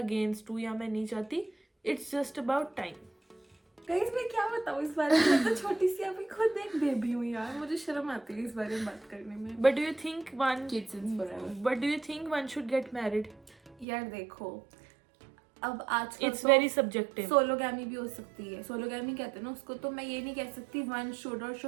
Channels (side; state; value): left; drops out; at 13.9 s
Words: हूँ या मैं नहीं चाहती। It's just about time. Guys मैं क्या बताऊँ इस बारे में, मैं तो छोटी सी अभी खुद एक बेबी हूँ यार, मुझे शर्म आती है इस बारे में बात करने में। But do you think one Kids is forever. But do you think one should get married? यार देखो, अब आजकल इट्स वेरी सब्जेक्टिव। सोलोगैमी भी हो सकती है। सोलोगैमी कहते हैं ना उसको, तो मैं ये नहीं कह सकती वन शुड और